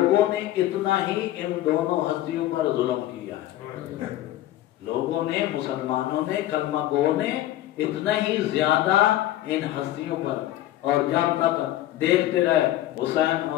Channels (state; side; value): quieter; right; 14.3 dB